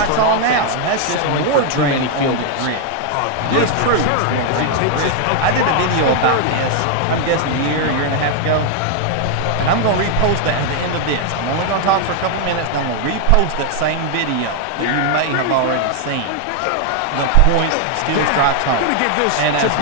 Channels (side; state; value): both; different; correlation 0.00